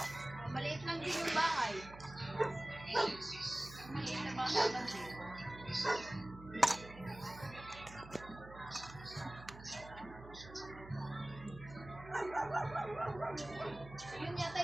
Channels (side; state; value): right; noise; hum, 16 dB below the sound